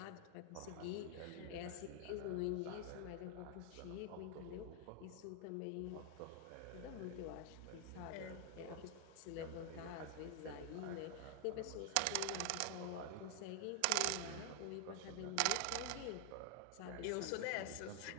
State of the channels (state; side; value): different; both; correlation 0.00